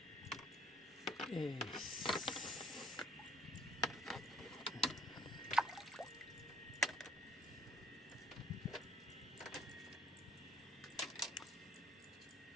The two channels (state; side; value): normal; both; correlation 0.58